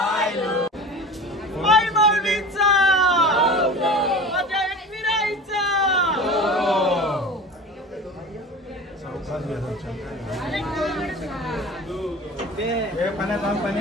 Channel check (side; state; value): both; normal; correlation 0.36